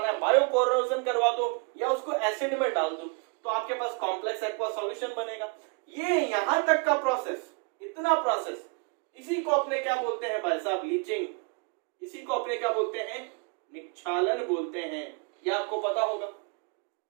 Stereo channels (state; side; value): quieter; left; 34.2 dB